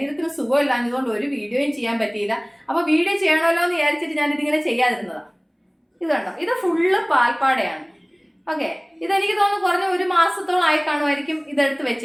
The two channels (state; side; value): identical; both; correlation 1.00